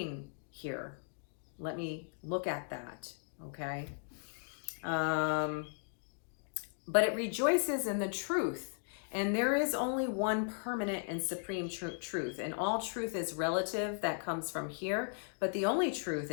here? Let me look at that, okay? But it rejoices in the truth. And there is only one permanent and supreme truth. And all truth is relative, that comes from here. But the only truth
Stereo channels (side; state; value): right; silent; digital silence